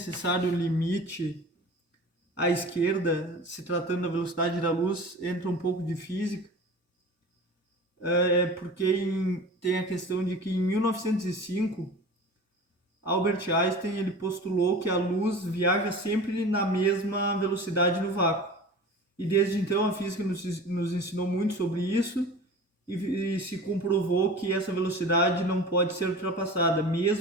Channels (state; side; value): normal; both; correlation 0.37